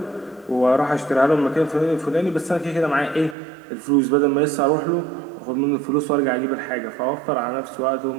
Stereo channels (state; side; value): drops out; left; at 3.4 s